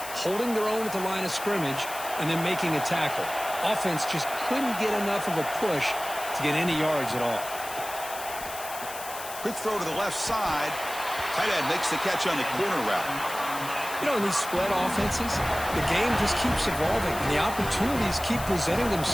holding their own at the line of scrimmage, and then making a tackle. Offense just couldn't get enough of a push to get any yards at all. Quick throw to the left side. Tight end makes the catch on the corner route. You know, in these spread offenses, the game just keeps evolving, and the opportunities keep presenting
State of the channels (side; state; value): left; noise; hiss, 11 dB below the sound